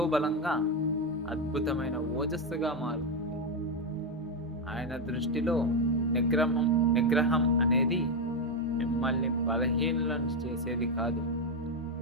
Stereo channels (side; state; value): both; normal; correlation 0.06